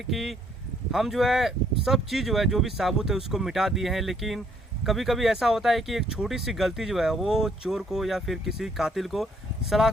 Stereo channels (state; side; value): normal; both; correlation 0.67